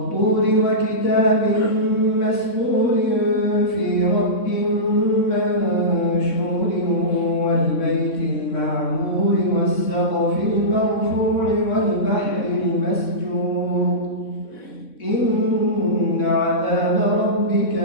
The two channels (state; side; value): late; right; 3.6 ms